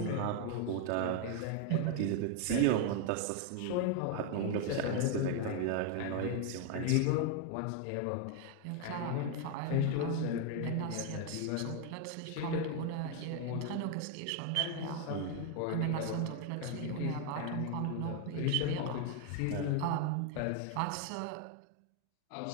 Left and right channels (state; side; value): different; both; correlation 0.01